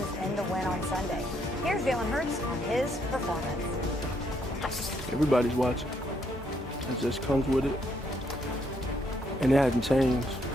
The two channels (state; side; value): normal; both; correlation 0.73